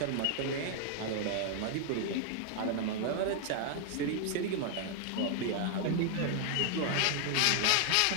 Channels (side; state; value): both; different; correlation 0.00